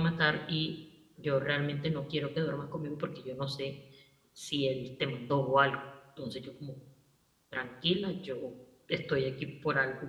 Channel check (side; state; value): both; identical; correlation 1.00